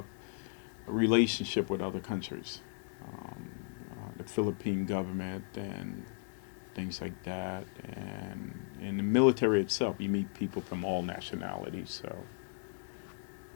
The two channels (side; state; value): right; silent; 54 dB below the other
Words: a relationship with other countries, the Philippine government and things like that. And in the military itself, you meet people from all nationalities, so